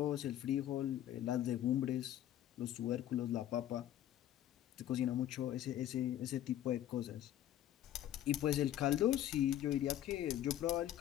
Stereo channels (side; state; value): right; quieter; 12.0 dB